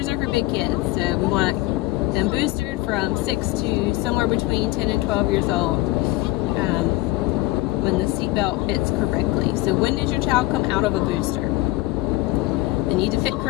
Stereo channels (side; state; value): right; quieter; 19.1 dB